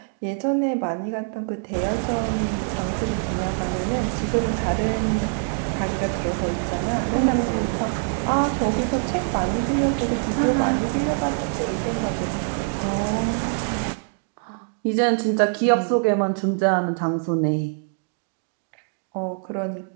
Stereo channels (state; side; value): silent; left; 56 dB below the other